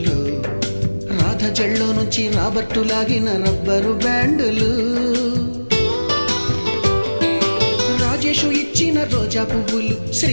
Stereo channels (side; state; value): both; inverted; correlation -1.00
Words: రాధ జల్లో నుంచి Robert లాగిన rubber బ్యాండులు, Rajesh ఇచ్చిన రోజా పువ్వులు,